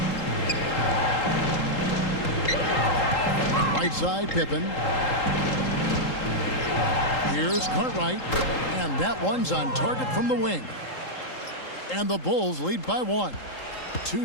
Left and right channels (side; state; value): right; late; 3.8 ms